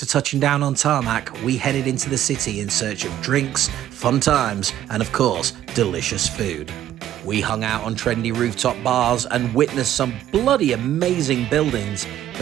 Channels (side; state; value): left; quieter; 12.0 dB